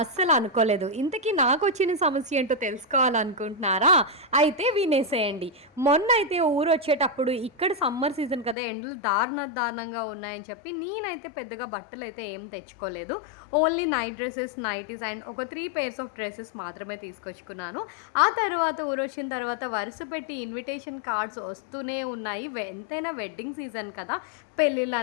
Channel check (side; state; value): right; drops out; at 8.6 s